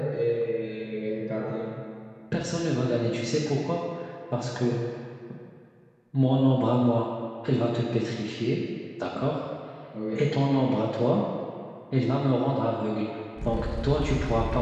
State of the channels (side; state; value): both; identical; correlation 1.00